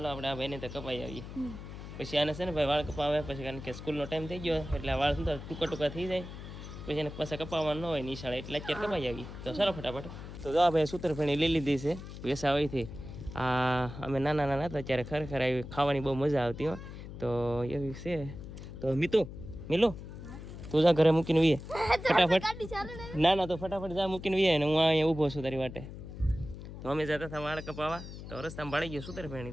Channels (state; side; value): noise; left; hum, 11 dB below the sound